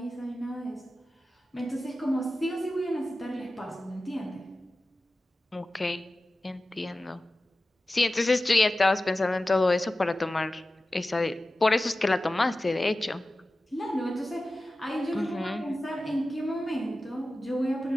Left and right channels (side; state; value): both; normal; correlation 0.95